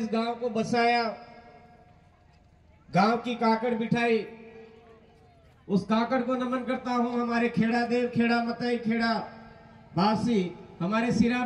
गांव को बसाया, गांव की काकड़ बिठाई, उस काकड़ को नमन करता हूं। हमारे खेड़ा देव, खेड़ा मताई, खेड़ा बासी, हमारे सिरा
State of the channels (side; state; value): both; identical; correlation 1.00